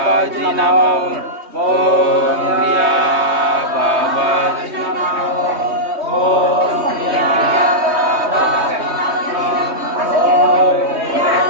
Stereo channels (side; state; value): left; late; 3.2 ms